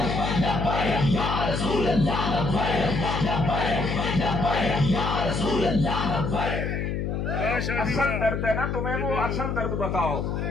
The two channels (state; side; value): noise; left; hum, 1 dB below the sound